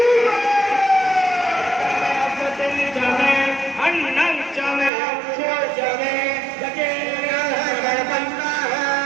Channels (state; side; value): drops out; left; at 4.9 s